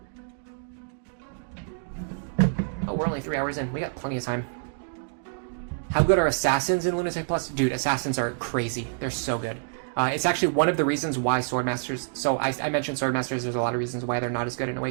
Oh, we're only 3 hours in. We got plenty of time. How good are Assassins in Lunatic Plus? Dude, Assassins are crazy. They're so good. It's actually one of the reasons why Swordmasters... So I mentioned Swordmasters, there's a lot of reasons why they're not as good in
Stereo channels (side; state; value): left; silent; digital silence